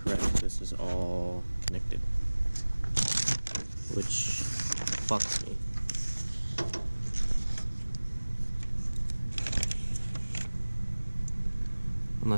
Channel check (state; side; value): inverted; both; correlation -1.00